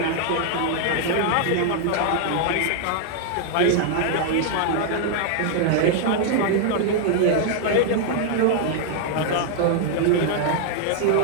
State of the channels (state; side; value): different; both; correlation 0.00